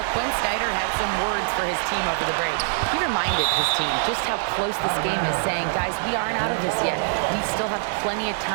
Quinn Snyder had some words for his team over the break. He reminded his team just how close this game is, saying, guys, we aren't out of this yet. We still have plenty of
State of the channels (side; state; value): left; silent; digital silence